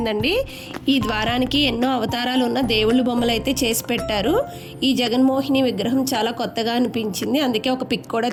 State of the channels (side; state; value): both; identical; correlation 1.00